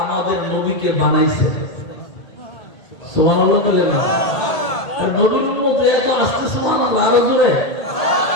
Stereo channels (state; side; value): late; right; 1.8 ms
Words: আমাদের নবীকে বানাইছেন। সুবহানাল্লাহ বলেন না? নবীর উম্মত এত আসছে সুবহানাল্লাহ, আরো জোরে